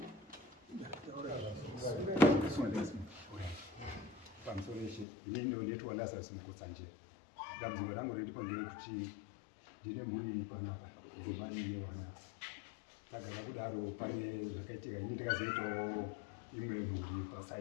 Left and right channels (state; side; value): drops out; right; at 5.1 s